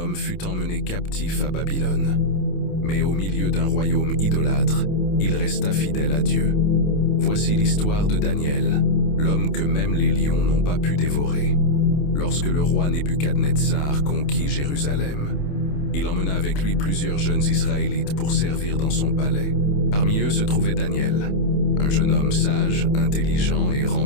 fut emmené captif à Babylone. Mais au milieu d'un royaume idolâtre, il resta fidèle à Dieu. Voici l'histoire de Daniel, l'homme que même les lions n'ont pas pu dévorer. Lorsque le roi Nebuchadnezzar conquit Jérusalem, il emmena avec lui plusieurs jeunes Israélites pour servir dans son palais. Parmi eux se trouvait Daniel, un jeune homme sage, intelligent et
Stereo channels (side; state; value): right; late; 28 ms